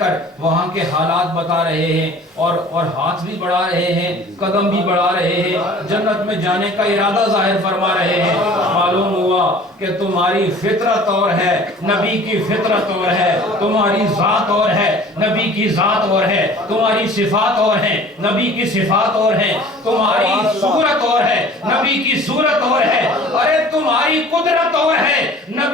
وہاں کے حالات بتا رہے ہیں، اور ہاتھ بھی بڑھا رہے ہیں، قدم بھی بڑھا رہے ہیں، جنت میں جانے کا ارادہ ظاہر فرما رہے ہیں. معلوم ہوا کہ تمہاری فطرت اور ہے، نبی کی فطرت اور ہے. تمہاری ذات اور ہے، نبی کی ذات اور ہے. تمہاری صفات اور ہیں، نبی کی صفات اور ہیں. تمہاری صورت اور ہے، نبی کی صورت اور ہے. ارے تمہاری قدرت اور ہے،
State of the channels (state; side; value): normal; both; correlation 0.47